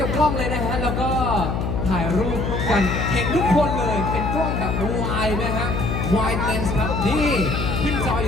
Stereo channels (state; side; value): noise; left; hum, 1 dB below the sound